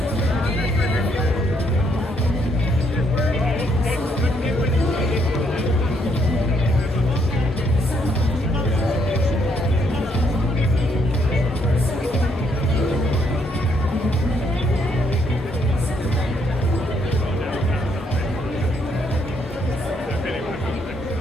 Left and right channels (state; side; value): normal; both; correlation 0.72